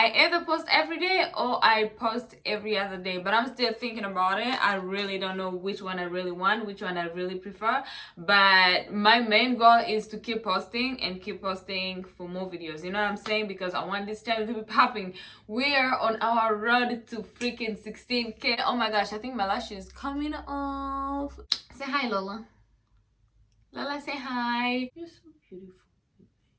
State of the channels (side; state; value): both; identical; correlation 1.00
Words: either post every day or I post every other day, but I'm still thinking about it. I really don't know which one I really want, which one I really prefer, but my main goal is to keep posting and keep posting for more videos, you know what I'm saying? Because I want this channel to be popping. We are on our road to freaking 16k. Oh my gosh, I think my lash is coming off. Say hi, Lola. Lola, say hi. You're so beautiful.